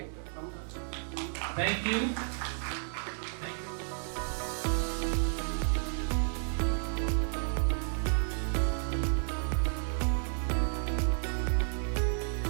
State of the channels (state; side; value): silent; left; 56 dB below the other